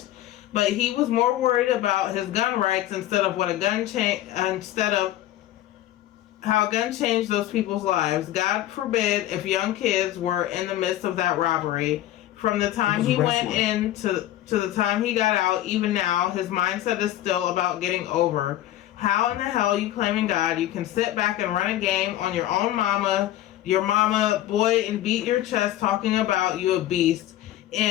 But he was more worried about his gun rights instead of how a gun changed those people's lives. God forbid if young kids were in the midst of that robbery. From the time he went into to the time he got out, even now, his mindset is still about getting over. How in the hell you claiming God? You can sit back and run a game on your own your mama, boy, and beat your chest talking about you a beast.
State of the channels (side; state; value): right; quieter; 13.7 dB